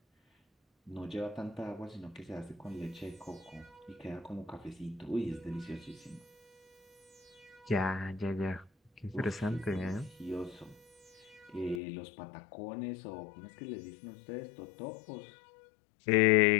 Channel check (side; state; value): right; drops out; at 11.8 s